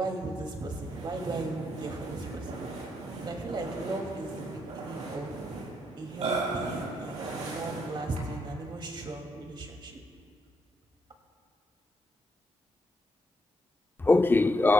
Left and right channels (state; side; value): normal; both; correlation 0.78